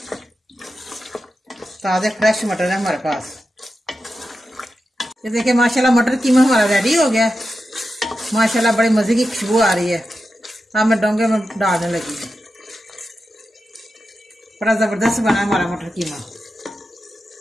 ताज़े फ्रेश मटर है हमारे पास। ये देखिए माशाल्लाह मटर कीमा हमारा रेडी हो गया। माशाल्लाह बड़ी मज़े की खुशबू आ रही है। अब मैं डोंगे में डालने लगी हूँ। बड़ा ज़बरदस्त बना हमारा मटर कीमा।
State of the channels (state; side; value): normal; both; correlation 0.90